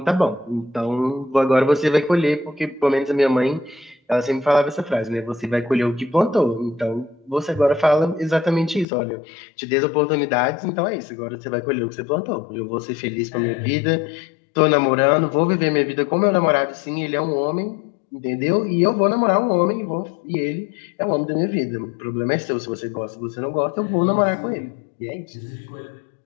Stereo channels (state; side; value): drops out; right; at 8.8 s